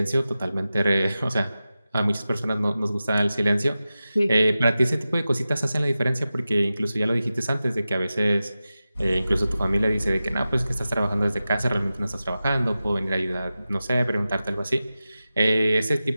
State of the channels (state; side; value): inverted; both; correlation -0.94